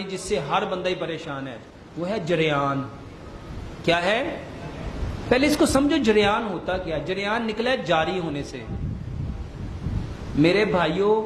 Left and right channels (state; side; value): identical; both; correlation 1.00